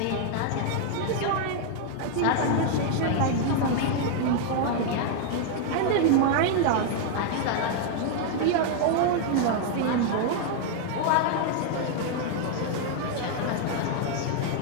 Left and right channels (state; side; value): different; both; correlation 0.00